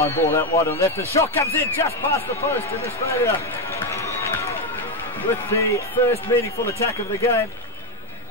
ball out wide on left. The shot comes in just past the post, and Australia with the first meaningful attack of the game.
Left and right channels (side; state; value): both; normal; correlation 0.06